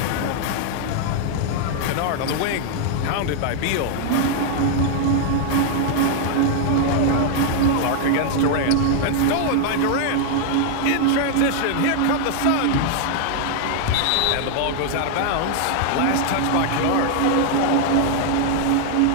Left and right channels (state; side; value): different; both; correlation 0.00